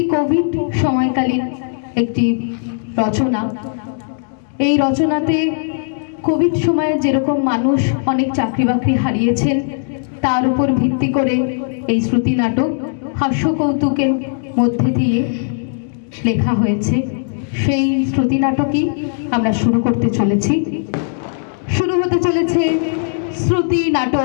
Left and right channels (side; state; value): right; silent; digital silence